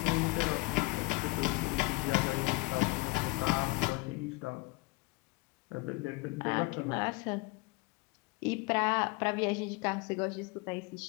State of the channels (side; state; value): right; quieter; 24.9 dB